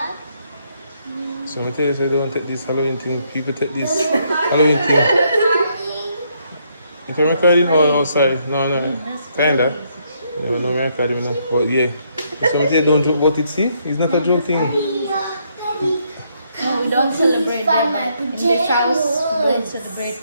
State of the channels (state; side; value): inverted; both; correlation -0.73